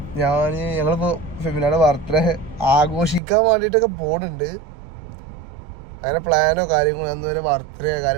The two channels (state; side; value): drops out; left; at 3.2 s